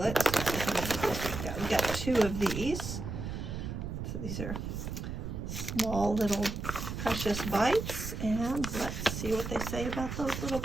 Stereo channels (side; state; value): right; noise; rumble, 5 dB below the sound